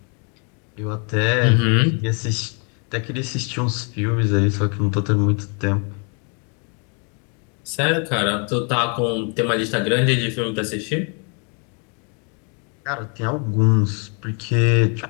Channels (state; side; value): quieter; right; 37.3 dB